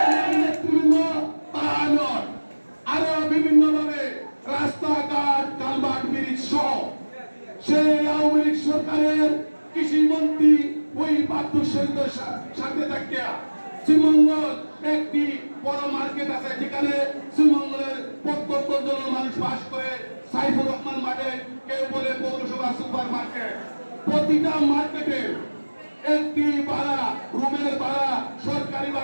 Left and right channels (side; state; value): both; inverted; correlation -1.00